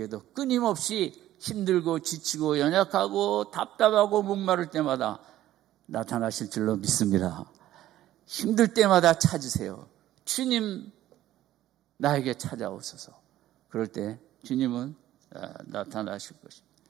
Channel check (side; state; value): left; quieter; 13.8 dB